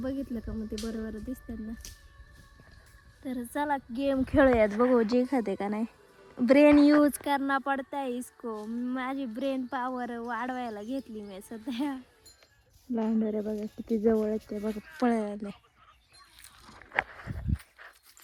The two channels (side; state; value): both; identical; correlation 1.00